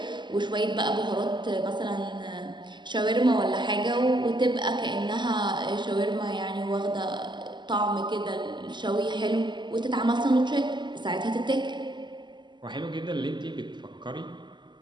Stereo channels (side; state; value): left; late; 0.22 ms